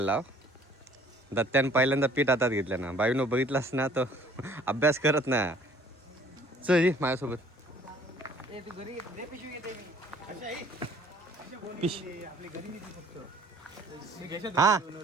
दत्त्यान पहिल्यांदा पीठ हातात घेतलं ना. बाईनो बघितलास ना, तो अभ्यास करत ना. चल माझ्यासोबत. हा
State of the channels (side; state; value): both; normal; correlation 0.54